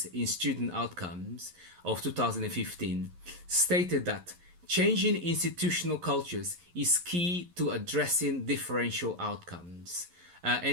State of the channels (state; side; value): late; left; 11 ms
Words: in student outcomes of 2015 stated that changing institutional cultures is key to addressing differential outcomes,